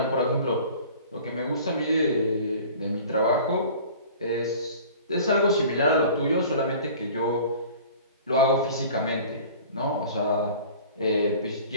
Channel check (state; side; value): inverted; both; correlation -0.45